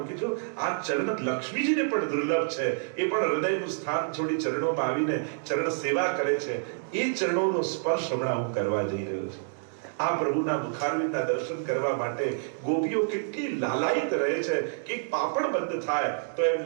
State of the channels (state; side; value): silent; left; digital silence